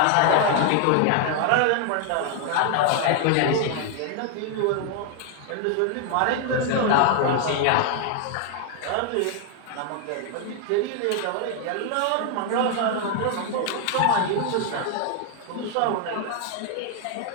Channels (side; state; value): both; different; correlation 0.00